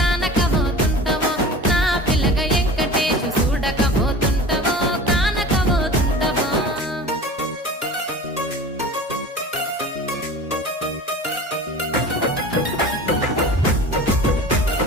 నా పిల్లగా ఎంకటేశు చూడకపోతుంటవో కానకపోతుంటవో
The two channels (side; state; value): both; normal; correlation 0.37